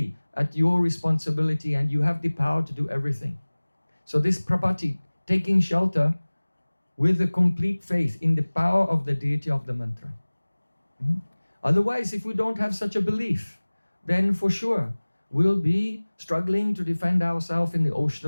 at your responsibility and you have the power to do everything. So this prapatti, taking shelter with a complete faith in the power of the deity of the mantra. Otherwise, if we don't have such a belief, then for sure we'll be struggling to defend ourselves in the ocean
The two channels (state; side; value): inverted; both; correlation -1.00